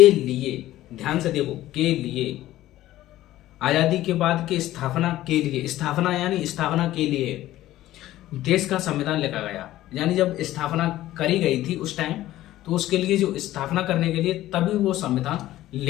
लिए, ध्यान से देखो, के लिए, आज़ादी के बाद की स्थापना के लिए, स्थापना यानी स्थापना के लिए देश का संविधान लिखा गया। यानी जब स्थापना करी गई थी उस टाइम, तो उसके लिए जो स्थापना करने के लिए तभी वो संविधान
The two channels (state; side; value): quieter; right; 14.9 dB